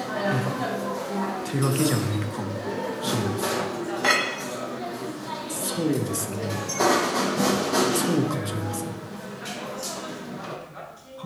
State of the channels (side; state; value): both; identical; correlation 1.00